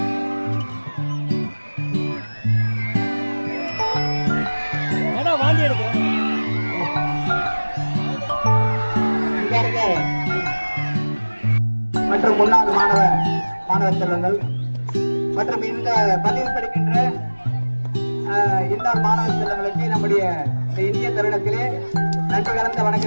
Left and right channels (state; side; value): inverted; both; correlation -1.00